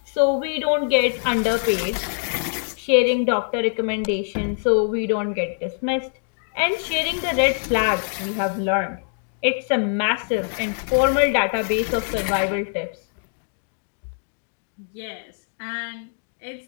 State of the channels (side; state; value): right; silent; digital silence